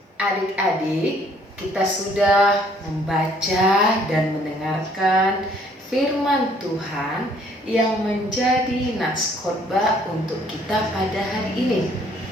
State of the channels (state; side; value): normal; both; correlation 0.62